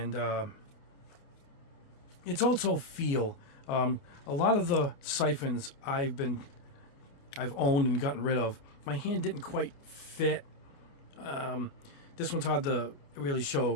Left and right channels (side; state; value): right; late; 29 ms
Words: it's also feel. A lot of the siphons I've owned and gotten rid of, my hand didn't quite fit. This one's hard to really show